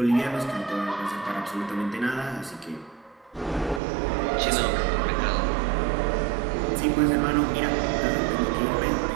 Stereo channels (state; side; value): drops out; left; at 3.8 s